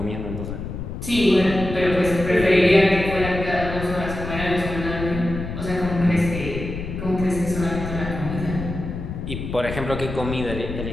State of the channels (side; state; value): left; noise; rumble, 7 dB below the sound